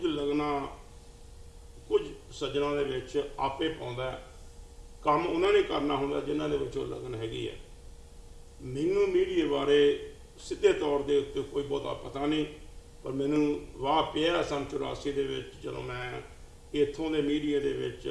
ਲਗਨਾ ਕੁਝ ਸੱਜਣਾ ਦੇ ਵਿੱਚ ਆਪੇ ਪਾਉਂਦਾ, ਕੰਮ ਉਹਨਾਂ ਨੇ ਕਰਨਾ ਹੁੰਦਾ ਜਿਨ੍ਹਾਂ ਦੇ ਵਿੱਚ ਉਹ ਲਗਨ ਹੈਗੀ ਹੈ। ਮੈਨੂੰ ਮੀਡੀਆ ਬਾਰੇ ਸਿੱਧੇ ਤੌਰ ਦੇ ਉੱਤੇ ਕੋਈ ਬਹੁਤਾ ਪਤਾ ਨਹੀਂ, ਪਰ ਮੈਨੂੰ ਵਾਹ ਪਿਆ ਸੰਨ 84 ਦੇ ਵਿੱਚ ਜਦੋਂ ਮੈਂ ਇੱਥੋਂ ਦੇ ਮੀਡੀਆ ਦੇ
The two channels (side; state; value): both; identical; correlation 1.00